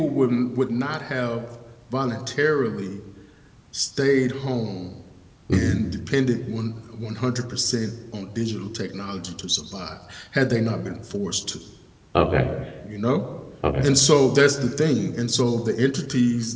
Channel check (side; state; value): both; identical; correlation 1.00